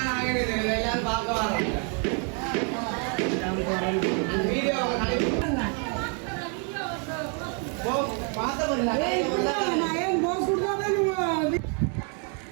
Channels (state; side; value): quieter; left; 39.7 dB